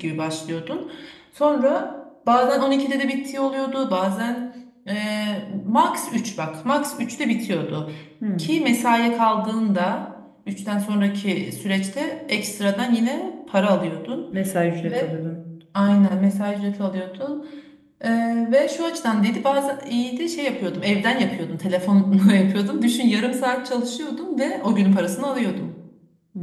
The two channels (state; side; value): identical; both; correlation 1.00